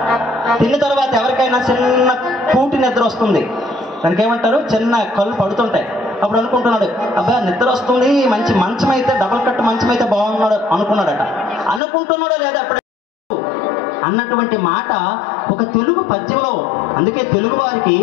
తిన్న తర్వాత ఎవరికైనా చిన్న కూటి నిద్ర వస్తుంది, దానికి ఏమంటారు, చిన్న కళ్ళు పడుతుంటాయి. అప్పుడు అనుకుంటున్నాడు, అబ్బా నిద్ర వస్తుంది, మంచి మంచం అయితే, డబల్ కట్ మంచం అయితే బాగున్నాడు అనుకున్నాడట. అనుకుంటున్నాడో లేదా అప్పుడే అన్నటువంటి మాట ఒక తెలుగు పద్యంలో. అందుకే తెలుగు వారికి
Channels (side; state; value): right; drops out; at 11.8 s